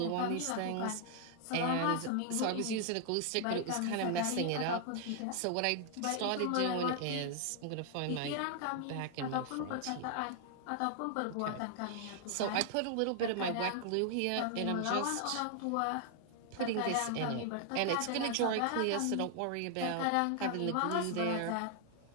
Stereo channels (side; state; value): both; different; correlation 0.00